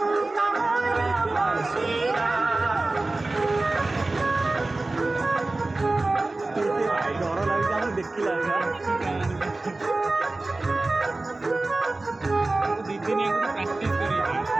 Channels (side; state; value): left; quieter; 3.1 dB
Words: ଡର ଲାଗୁଛି ଆମକୁ ଦେଖିଲା